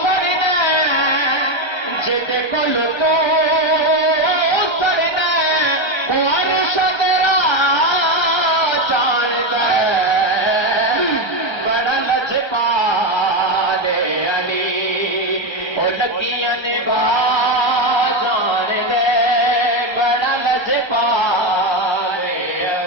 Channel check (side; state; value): right; late; 1.3 ms